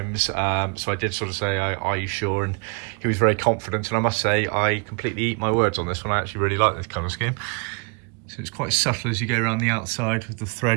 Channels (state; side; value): quieter; left; 32.9 dB